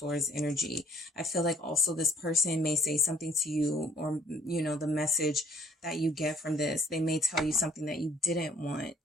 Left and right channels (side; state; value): both; normal; correlation 0.60